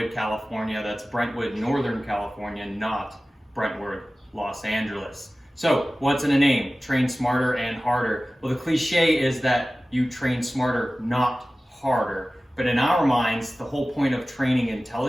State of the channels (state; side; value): normal; both; correlation 0.97